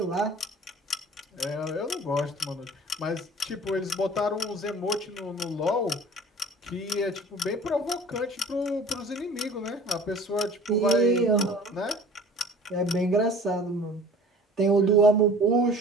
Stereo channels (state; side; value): normal; both; correlation 0.46